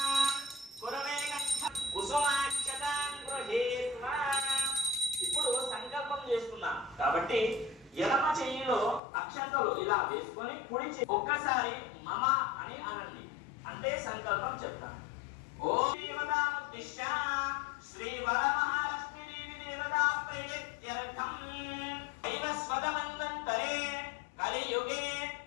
కురమే కంఠ కుసుమాక్షతాం గృహీత్వా. ఇప్పుడు సంకల్పం చేసుకున్నాం కాబట్టి ఎడమ చెయ్యిలో అక్షంతలు ఇలా వేసుకొని కుడి ఒక్కసారి మమ అని అనండి, అంటే సంకల్పం చెప్తాను. ఓం దేవతాముద్దిశ్య శ్రీ వరమహాలక్ష్మీ దేవి దేవతా ప్రీత్యర్థం దైవస్వదమంతరే కలియుగే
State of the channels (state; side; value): drops out; right; at 9.0 s